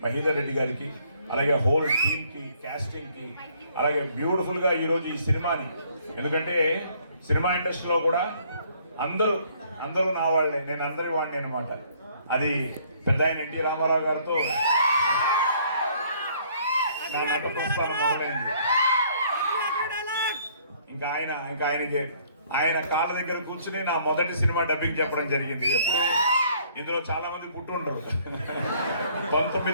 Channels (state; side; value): inverted; both; correlation -0.62